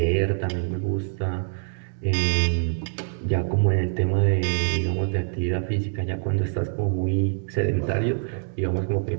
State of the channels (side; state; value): left; silent; digital silence